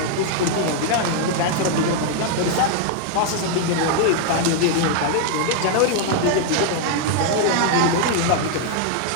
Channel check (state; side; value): different; both; correlation 0.00